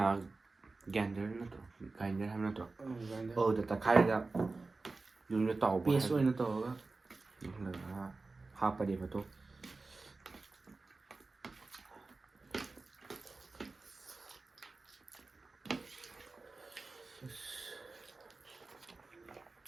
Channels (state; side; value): quieter; left; 3.7 dB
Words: ꯒ꯭ꯔꯥꯏꯟꯗꯔ ꯅꯠꯇ꯭ꯔꯣ ꯒ꯭ꯔꯥꯏꯟꯗꯔ ꯍꯥꯏꯕ ꯅꯠꯇ꯭ꯔꯣ ꯑꯗꯨꯗ ꯇꯛꯈꯥꯏꯔꯒ ꯌꯨꯝꯗ ꯇꯥꯎꯕ ꯄꯦꯁ ꯑꯣꯏꯅ ꯇꯧꯔꯒ ꯍꯥꯞꯄꯅꯦꯕ ꯑꯗꯣ